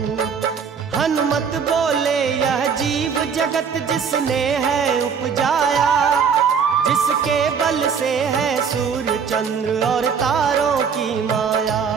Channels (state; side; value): quieter; left; 6.5 dB